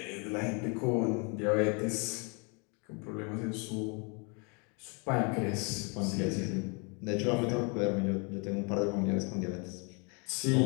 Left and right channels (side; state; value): right; quieter; 33.5 dB